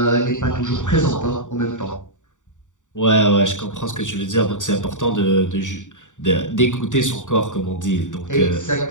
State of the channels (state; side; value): late; right; 0.86 ms